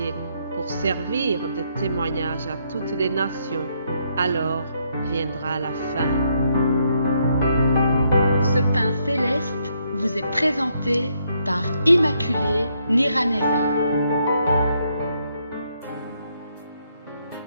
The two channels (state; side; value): inverted; both; correlation -0.74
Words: pour servir de témoignage à toutes les nations. Alors viendra la fin. Ce pain céleste vous est présenté par Immaculée Niraneza.